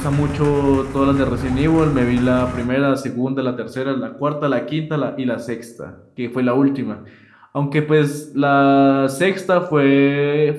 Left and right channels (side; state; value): both; identical; correlation 1.00